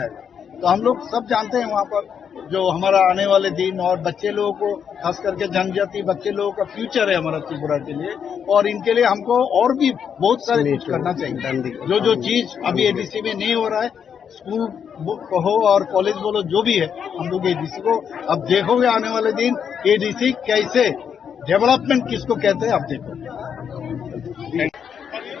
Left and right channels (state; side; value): quieter; right; 7.6 dB